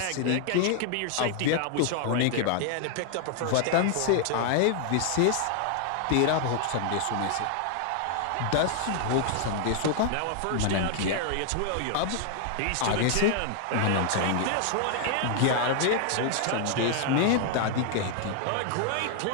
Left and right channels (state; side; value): different; both; correlation 0.00